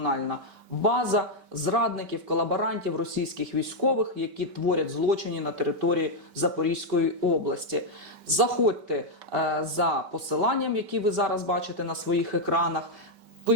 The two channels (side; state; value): left; late; 5.2 ms